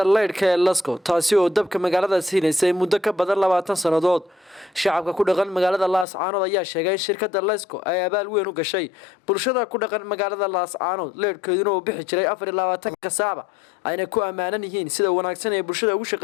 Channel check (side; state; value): right; drops out; at 6.1 s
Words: leydhka ee Lasco taasi oo dabka magaalada siinaysay muddo ka badan 20 sanadood. shacabka ku dhaqan magaalada Laascaanood ayaa sheegay in shirkadda Lasco ay abaal weyn u gashay bulshada ku dhaqan magaalada Laascaanood leydhkeeduna uu bixi jiray 24 saac ayna ku amaanan yihiin sida wanaagsan ee bulshada ugu